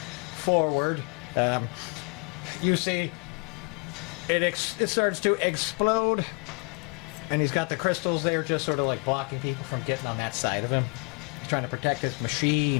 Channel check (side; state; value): right; quieter; 34.7 dB